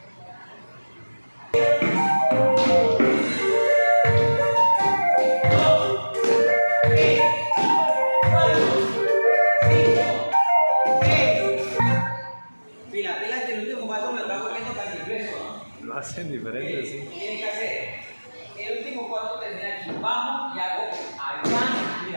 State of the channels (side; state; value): both; inverted; correlation -1.00